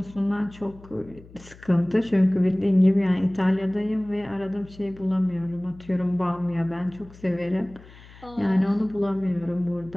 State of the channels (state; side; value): noise; left; hum, 21 dB below the sound